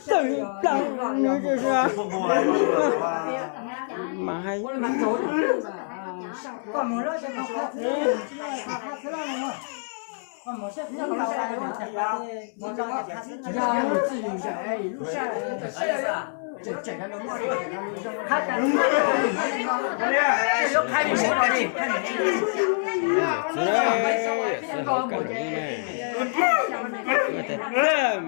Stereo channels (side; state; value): right; silent; 61 dB below the other